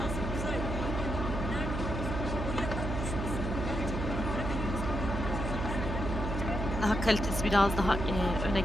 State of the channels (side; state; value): right; noise; hum, 3 dB below the sound